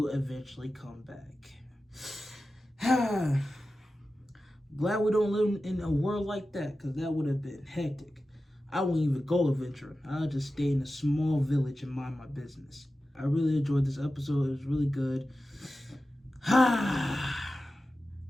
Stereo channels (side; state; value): both; normal; correlation 0.94